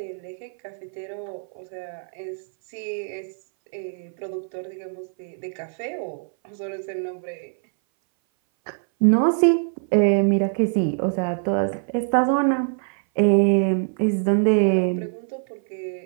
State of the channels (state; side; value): silent; left; 60 dB below the other